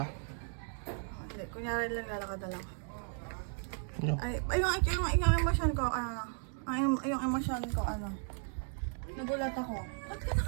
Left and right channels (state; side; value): silent; left; 54 dB below the other